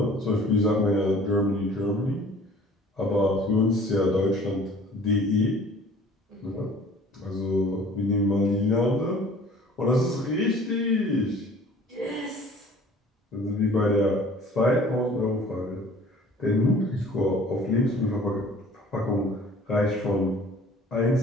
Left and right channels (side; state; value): both; normal; correlation 0.50